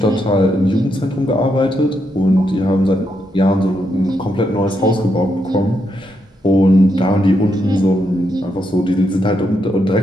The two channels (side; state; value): both; normal; correlation 0.80